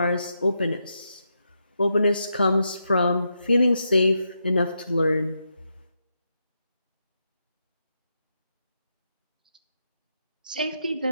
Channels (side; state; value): both; inverted; correlation -0.84